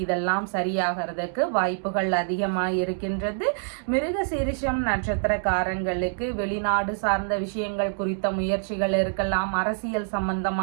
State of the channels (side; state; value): left; silent; 61 dB below the other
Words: இதெல்லாம் சரியாகிறதுக்கு வாய்ப்புகள் அதிகமாக இருக்கின்றது. மிருகசீரிஷம் நட்சத்திரக்காரங்களுக்கு வெளிநாடு சார்ந்த விஷயங்கள் குறித்த முயற்சிகள் இருக்கலாம். அரசியல்